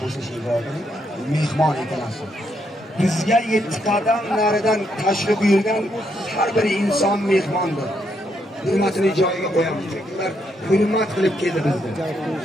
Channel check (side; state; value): both; normal; correlation 0.77